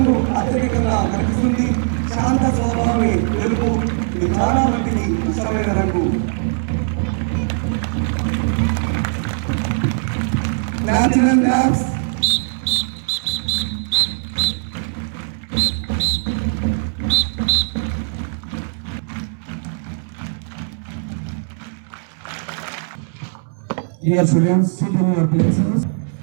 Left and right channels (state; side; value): silent; left; digital silence